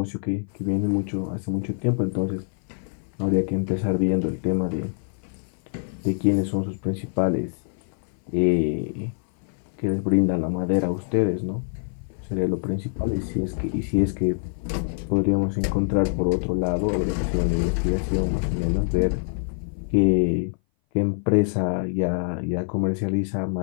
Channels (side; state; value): right; silent; 58 dB below the other